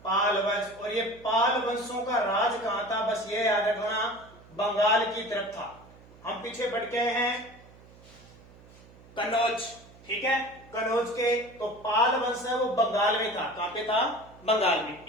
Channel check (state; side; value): noise; right; hum, 23 dB below the sound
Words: पाल वंश। और ये पाल वंशों का राज कहां था, बस ये याद रखना, बंगाल की तरफ था। हम पीछे बढ़ गए हैं कन्नौज, ठीक है, कन्नौज के। तो पाल वंश है वो बंगाल में था। कहां पे था? बंगाल में।